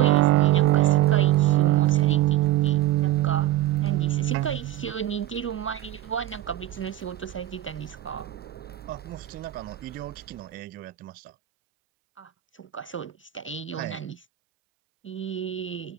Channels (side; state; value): left; quieter; 14.2 dB